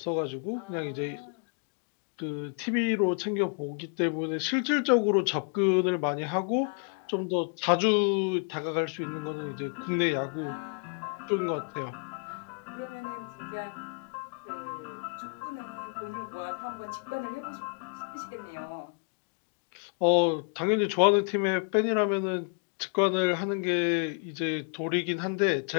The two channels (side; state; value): right; quieter; 39.9 dB